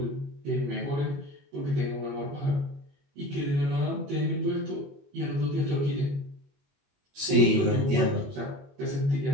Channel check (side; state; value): left; late; 21 ms